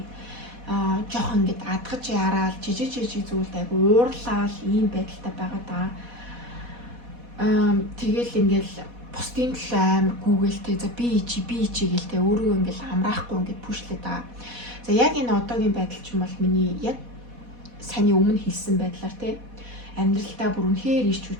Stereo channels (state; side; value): late; left; 4.1 ms